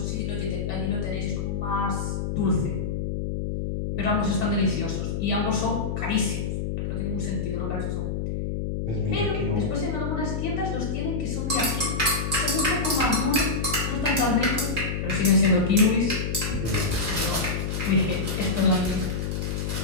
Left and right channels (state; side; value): noise; left; hum, 2 dB below the sound